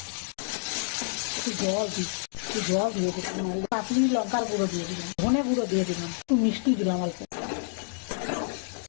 একটু জল দিচ্ছি, একটু জল দিয়ে দিচ্ছি, কাশ্মীরি লঙ্কার গুঁড়ো দিয়ে দিলাম, ধনে গুঁড়ো দিয়ে দিলাম, একটু মিষ্টি দিলাম, অল্প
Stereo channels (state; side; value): silent; right; 59 dB below the other